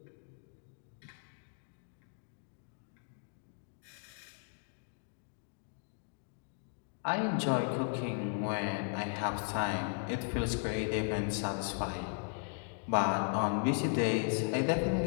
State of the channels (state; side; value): silent; right; 53 dB below the other